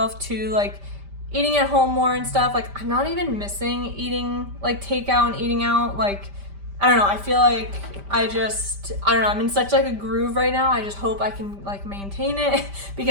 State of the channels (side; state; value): left; late; 5.1 ms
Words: to like eating at home more and stuff, like I'm not even missing eating like takeout and eating out. Like, I don't know, I feel like I don't know, I'm in such like a groove right now. I just hope I can like maintain it